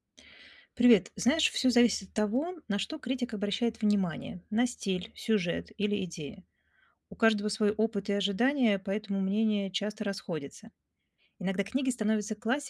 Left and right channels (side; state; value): both; identical; correlation 1.00